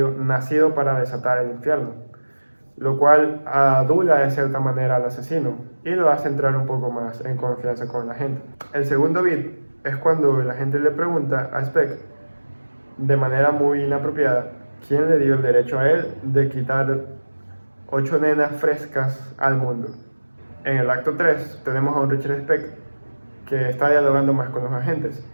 nacido para desatar el infierno, lo cual adula de cierta manera al asesino y lo hace entrar un poco más en confianza con la gente. El segundo bit es cuando la gente le pregunta a Speck, de manera muy inapropiada, quién le dio el derecho a él de quitar 8 nenas frescas al mundo. En el acto 3 tenemos a un Richard Speck que está dialogando más con los agentes.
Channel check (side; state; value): both; inverted; correlation -1.00